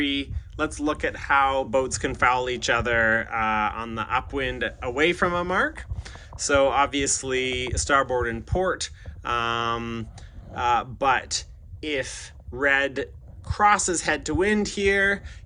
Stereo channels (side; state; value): both; identical; correlation 1.00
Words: let's look at how boats can foul each other on the upwind away from a mark. So obviously starboard and port, but if red crosses head to wind here,